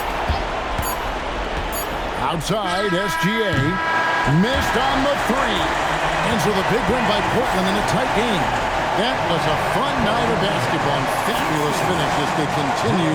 Outside, SGA missed on the 3. And so the big win by Portland in a tight game. That was a fun night of basketball and fabulous finish as they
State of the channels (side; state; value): both; identical; correlation 1.00